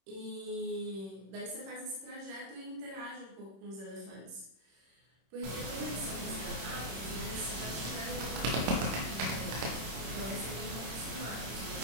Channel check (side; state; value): left; late; 26 ms